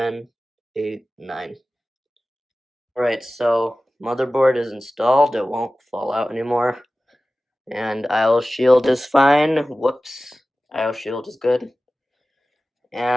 8, 9. Alright, so motherboard is installed. It won't fall out anymore. And IO shield is fine. Whoops. IO shield is good.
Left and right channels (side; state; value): both; normal; correlation 0.96